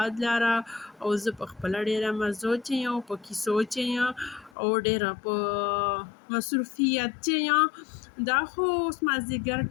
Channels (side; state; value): right; drops out; at 4.5 s